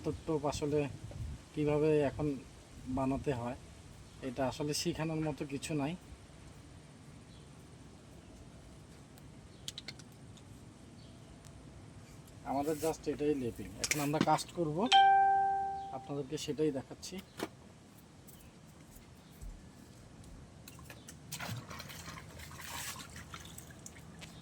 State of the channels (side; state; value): both; identical; correlation 1.00